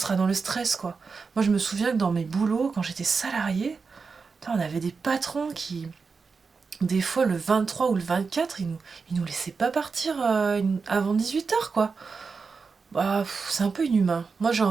dans le stress, quoi. Moi, je me souviens que dans mes boulots, quand j'étais salariée, on avait des patrons qui, des fois le 23 ou le 24, ils nous laissaient pas partir avant 18h, quoi. Bah, c'est un peu inhumain. Moi, j'ai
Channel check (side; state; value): left; quieter; 4.9 dB